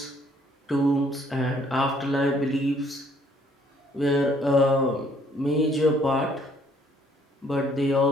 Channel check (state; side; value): normal; both; correlation 0.64